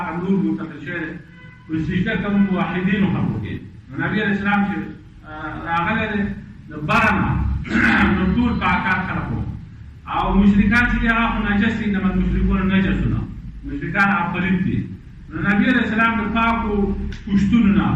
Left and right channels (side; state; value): both; identical; correlation 1.00